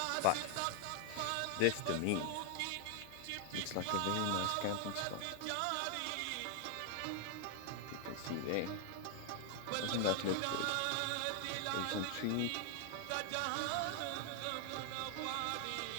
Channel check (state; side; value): different; both; correlation 0.00